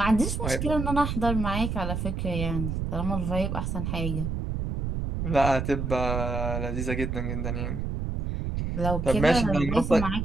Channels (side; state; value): right; noise; rumble, 2 dB below the sound